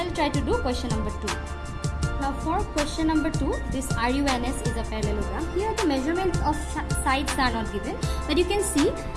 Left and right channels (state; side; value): identical; both; correlation 1.00